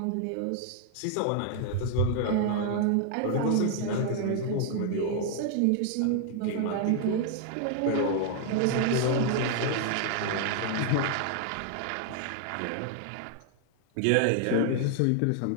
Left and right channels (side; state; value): both; different; correlation 0.00